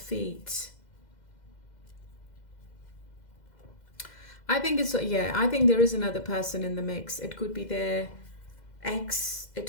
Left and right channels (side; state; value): right; late; 2.0 ms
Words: I think I think there is another person in the mix. It could be their ex,